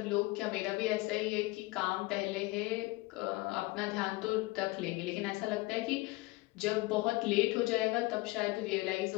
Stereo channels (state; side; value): quieter; right; 21.8 dB